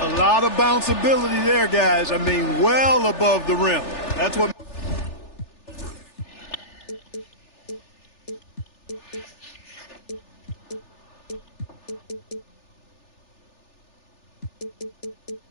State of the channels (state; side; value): late; right; 3.4 ms